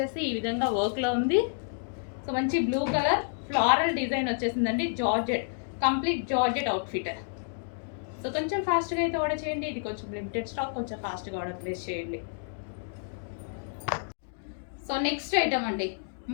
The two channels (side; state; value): right; silent; digital silence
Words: ఈ విధంగా వర్క్లో ఉంది. సో మంచి బ్లూ కలర్ ఫ్లారల్ డిజైన్ వచ్చేసిందండి, georgette, complete georgette outfit. So కొంచెం ఫాస్ట్గా అయితే ఆర్డర్ చేయండి, ఇది కొంచెం లిమిటెడ్ స్టాక్, కొంచెం ఫాస్ట్గా ఆర్డర్ ప్లేస్ చేయండి. సో నెక్స్ట్ ఐటమ్ అండి,